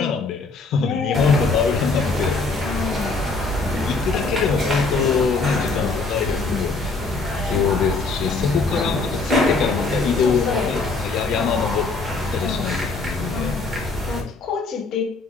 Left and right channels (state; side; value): quieter; right; 3.9 dB